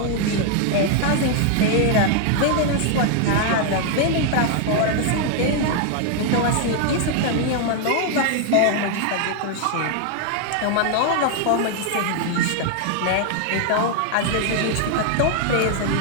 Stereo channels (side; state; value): both; different; correlation 0.00